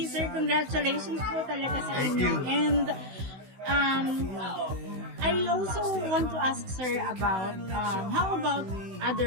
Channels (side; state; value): left; late; 16 ms